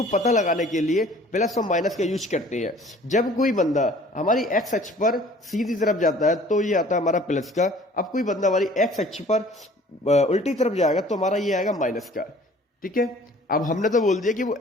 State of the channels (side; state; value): both; normal; correlation 0.51